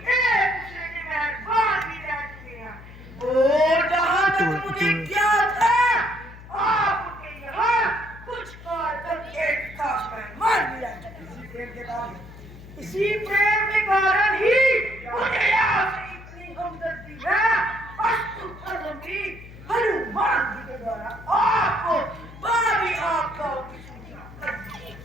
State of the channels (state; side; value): noise; left; hum, 17 dB below the sound